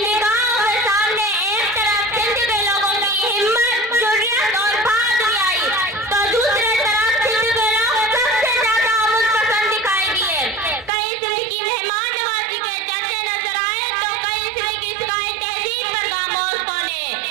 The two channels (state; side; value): drops out; left; at 10.9 s